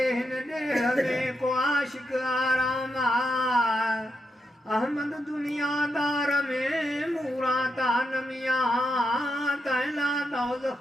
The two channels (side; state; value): both; normal; correlation 0.83